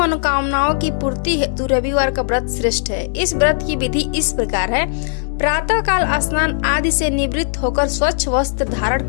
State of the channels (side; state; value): right; silent; digital silence